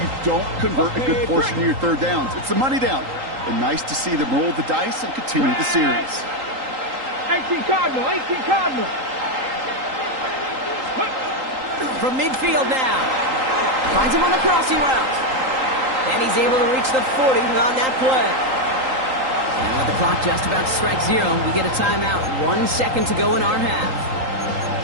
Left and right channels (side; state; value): left; late; 3.8 ms